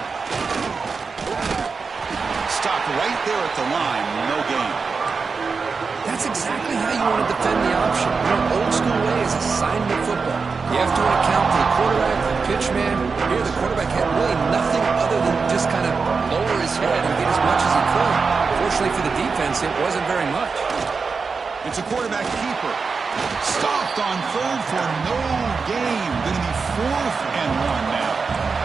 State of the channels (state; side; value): quieter; left; 4.9 dB